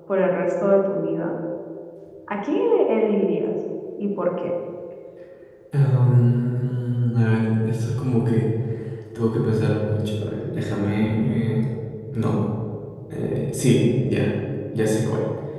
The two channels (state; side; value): identical; both; correlation 1.00